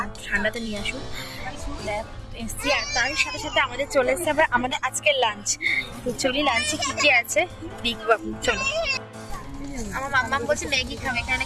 না, ঠান্ডাতে নিয়ে আসুন এসছি। আর তার সাথে সাথে আমাদের চলে এসছে আবার আমাদের আজকের লাঞ্চ। তো চলি লাঞ্চে কি কি আছে দেখবো, চলো। আমার মাম্মা বলছে ম্যাগি খাবে, এখানে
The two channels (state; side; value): identical; both; correlation 1.00